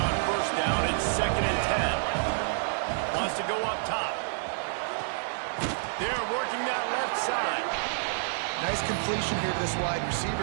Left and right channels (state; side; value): silent; left; digital silence